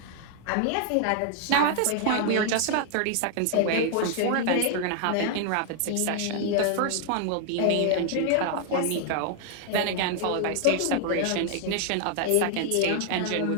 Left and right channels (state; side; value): different; both; correlation 0.00